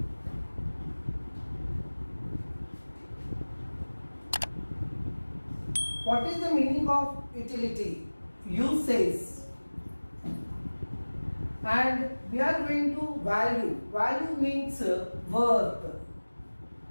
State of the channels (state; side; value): inverted; both; correlation -1.00